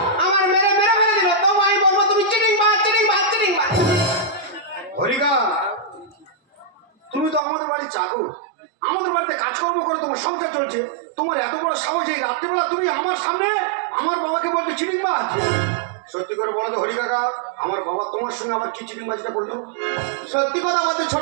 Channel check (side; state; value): left; drops out; at 7.4 s